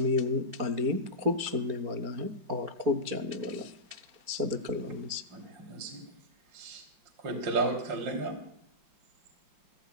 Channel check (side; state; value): left; late; 4.4 ms